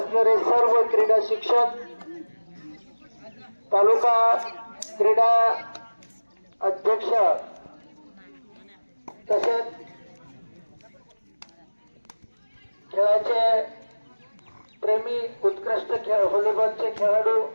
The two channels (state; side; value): inverted; both; correlation -1.00